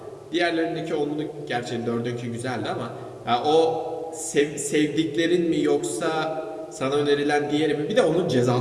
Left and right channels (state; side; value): identical; both; correlation 1.00